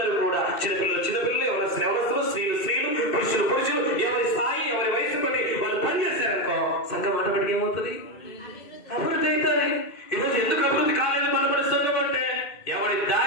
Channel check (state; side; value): late; right; 2.6 ms